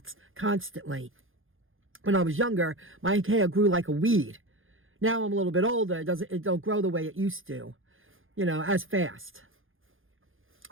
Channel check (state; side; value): late; left; 0.59 ms